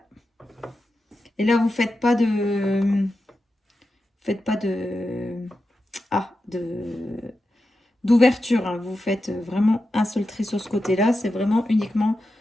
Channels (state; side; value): normal; both; correlation 0.90